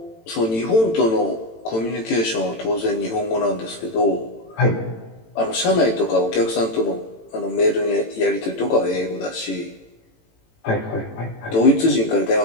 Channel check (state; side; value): late; right; 18 ms